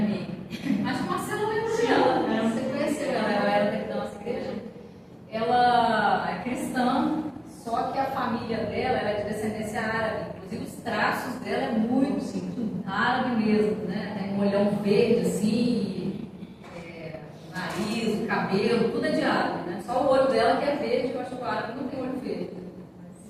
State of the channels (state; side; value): identical; both; correlation 1.00